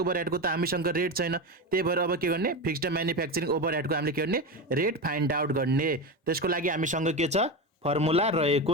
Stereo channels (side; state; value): both; normal; correlation 0.19